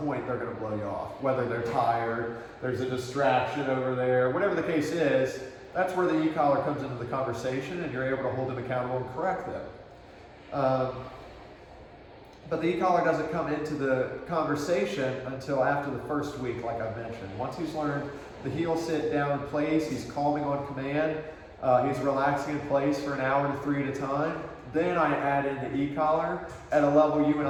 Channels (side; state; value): both; identical; correlation 1.00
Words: they're going to blow you off. Whether they're tired, there's a distraction over there, whatever the case is, that's where the e-collar comes into the conversation and you're able to hold them accountable and correct them. But the e-collar doesn't come into the conversation until after the first week, like I mentioned. Once he's learned the heel sit down in place, he's calming on command, he's relaxing in place for an hour to 3 at a time, then I add in the e-collar at a level you and